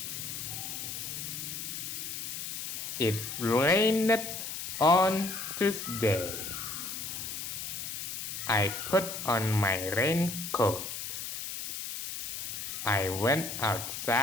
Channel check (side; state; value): left; noise; hiss, 6 dB below the sound